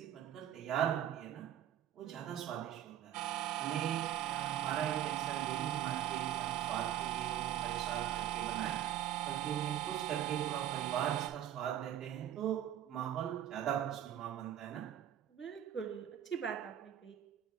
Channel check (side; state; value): left; quieter; 11.3 dB